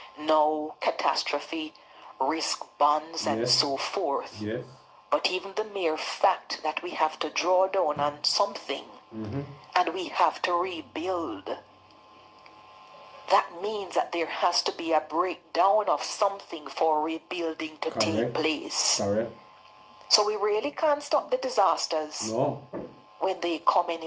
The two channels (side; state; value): both; identical; correlation 1.00